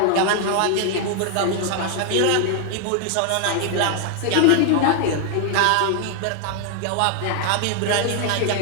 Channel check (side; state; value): both; different; correlation 0.00